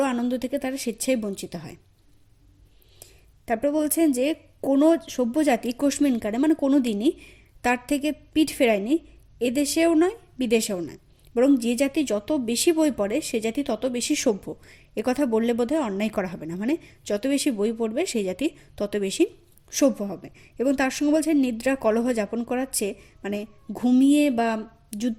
আনন্দ থেকে তারা স্বেচ্ছায় বঞ্চিত হয়। তারপর বলছেন যে কোনো সভ্য জাতি কোশমিনকারে মানে কোনো দিনই তার থেকে পিঠ ফেরায়নি, এদেশেও নয় বিদেশেও নয়। বরং যে জাতি যত বেশি বই পড়ে সে জাতি তত বেশি সভ্য। কথা বললে বোধহয় অন্যায় করা হবে না। মানে যত বেশি বই পড়বে সেই জাতি তত বেশি সভ্য হবে। এবং তার সঙ্গে বলছেন নিদ্রা কলহ যাপন করার চেয়ে মানে ঘুমিয়ে বা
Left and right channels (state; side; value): identical; both; correlation 1.00